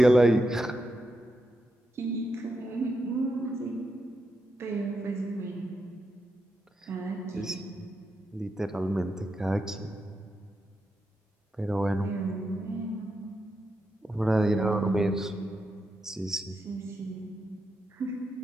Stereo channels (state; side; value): normal; both; correlation 0.85